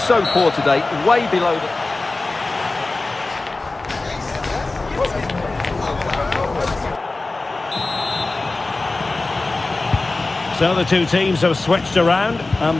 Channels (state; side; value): quieter; right; 3.3 dB